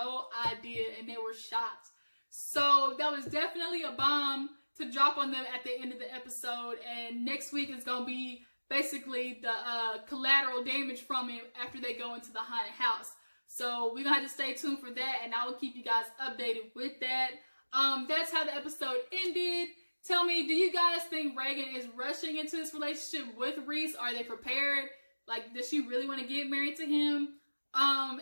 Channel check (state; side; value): inverted; both; correlation -1.00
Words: idea and they were shocked. So that was definitely a bomb to drop on them at the end of the episode. And next week is going to be basically the collateral damage from it after they go into the haunted house. So we're going to have to stay tuned for that, and I will keep you guys updated with that. That's how the episode ended. Tell me, do you guys think Raegan is rushing into this relationship with Reece? Are they prepared? Like, does she really want to get married to him?